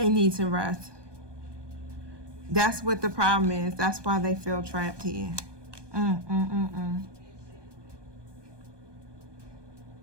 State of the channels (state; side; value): late; left; 1.2 ms